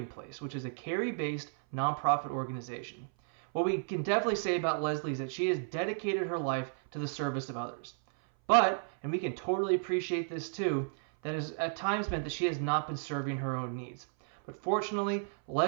Place, which is a Cary-based nonprofit organization. What we can definitely say about Leslie is that she has dedicated her life to the service of others. But, and we can totally appreciate this too, that has at times meant that she has not been serving her own needs. But fortunately,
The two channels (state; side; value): silent; left; 56 dB below the other